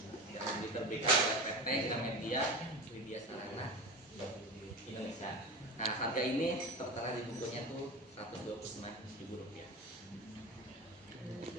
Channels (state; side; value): normal; both; correlation 0.27